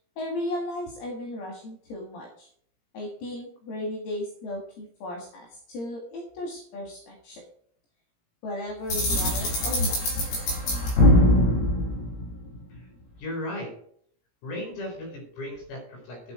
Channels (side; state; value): right; late; 17 ms